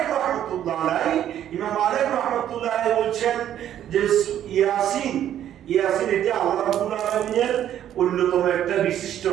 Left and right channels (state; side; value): quieter; left; 10.9 dB